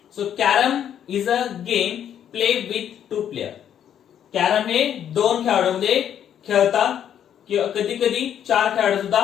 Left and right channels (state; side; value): quieter; right; 9.6 dB